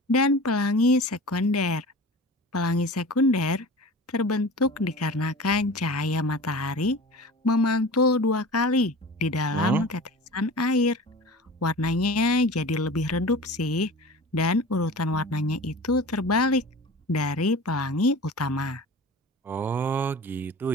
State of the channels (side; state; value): both; normal; correlation 0.37